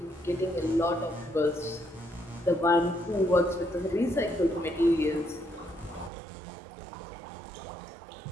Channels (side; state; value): left; drops out; at 6.1 s